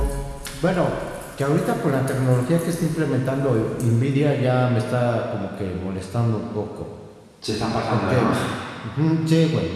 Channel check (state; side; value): identical; both; correlation 1.00